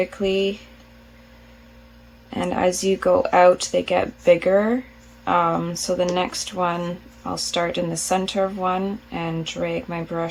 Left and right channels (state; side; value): identical; both; correlation 1.00